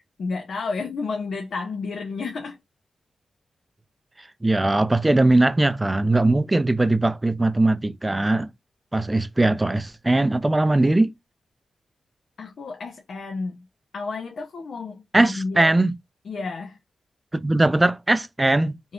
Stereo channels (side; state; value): both; normal; correlation 0.98